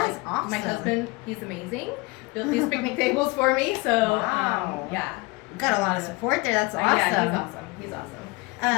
is like, awesome. My husband, he's amazing. Built these picnic tables for me. So Wow. yeah. Got a lot of support there. That's awesome. Yeah, he's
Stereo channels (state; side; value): quieter; right; 25.1 dB